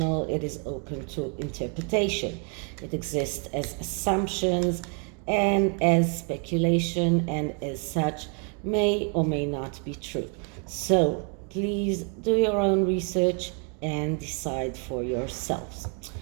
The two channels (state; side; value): quieter; left; 39.3 dB